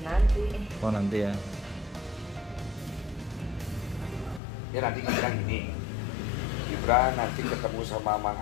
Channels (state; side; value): drops out; right; at 4.4 s